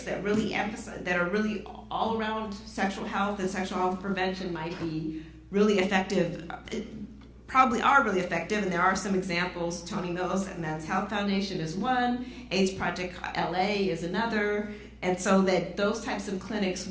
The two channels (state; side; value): identical; both; correlation 1.00